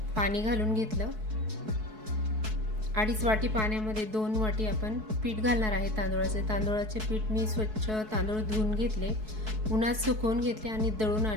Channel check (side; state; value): left; late; 4.6 ms